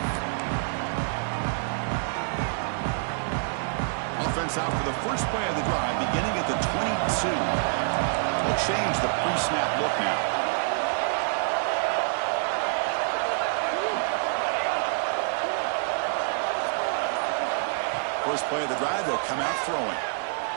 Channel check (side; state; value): left; silent; digital silence